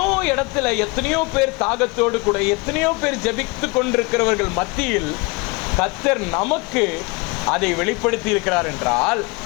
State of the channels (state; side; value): quieter; right; 26.9 dB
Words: இடத்துல எத்தனையோ பேர் தாகத்தோடு கூட எத்தனையோ பேர் ஜெபித்து கொண்டிருக்கிறவர்கள் மத்தியில் கர்த்தர் நமக்கு அதை வெளிப்படுத்தி இருக்கிறார் என்றால்,